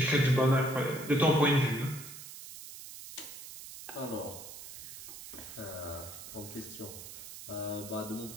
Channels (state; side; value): noise; right; hiss, 13 dB below the sound